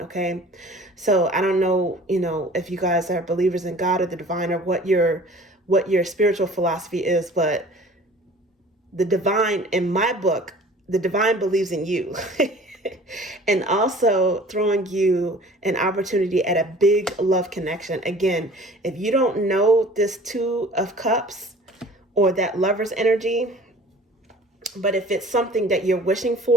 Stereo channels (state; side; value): normal; both; correlation 0.47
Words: okay? So I don't know, if you guys are believers in God or the divine, or what your spiritual philosophy is, but the divine, in my book, the divine believes in you. And also throwing you an opportunity at a big love connection. Again, if you don't know this 2 of Cups or that lover's energy, but if it's something that you're wishing